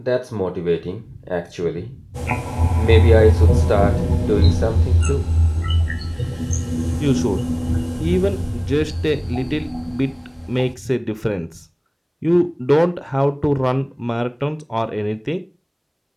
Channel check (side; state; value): both; identical; correlation 1.00